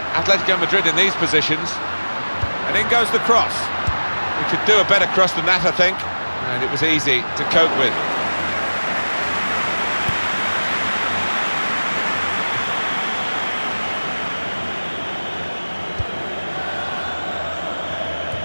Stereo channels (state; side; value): inverted; both; correlation -1.00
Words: Atletico Madrid in these positions. And in goes the cross. We could do a better cross than that, I think. And it was easy to cope with.